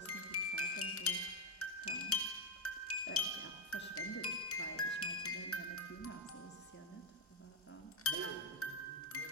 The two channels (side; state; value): both; normal; correlation 0.06